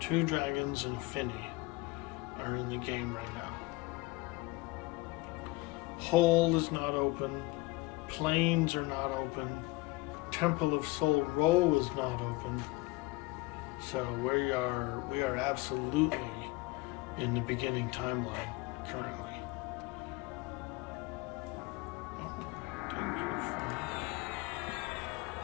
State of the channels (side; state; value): right; quieter; 21.5 dB